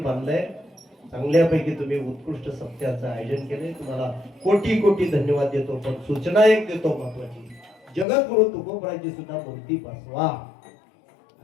बांधलंय. चांगल्यापैकी तुम्ही उत्कृष्ट सत्याचं आयोजन केलंय. तुम्हाला कोटी कोटी धन्यवाद देतो. पण सूचना एक देतो महत्वाची: जगद्गुरु तुकोबरायची सुद्धा मूर्ती बसवा,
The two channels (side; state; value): right; drops out; at 8.1 s